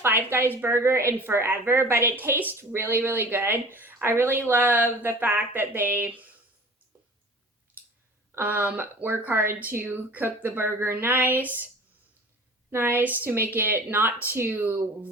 Guys burger in forever, but it tastes really, really good. I really love the fact that they work hard to cook the burger nice to make it not too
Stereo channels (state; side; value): normal; both; correlation 0.42